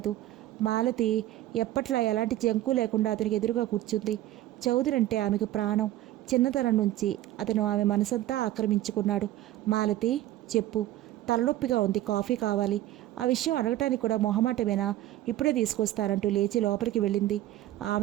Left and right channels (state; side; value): quieter; left; 14.5 dB